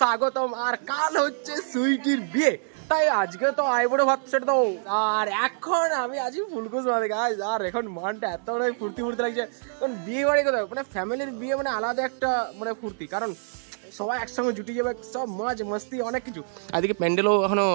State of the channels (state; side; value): silent; left; digital silence